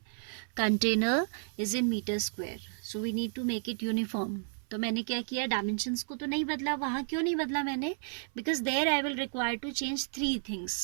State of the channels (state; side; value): silent; left; 56 dB below the other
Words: container is in metre square. So we need to make it uniform. तो मैंने क्या किया, dimensions को तो नहीं बदला. वहाँ क्यों नहीं बदला मैंने? Because there I will require to change 3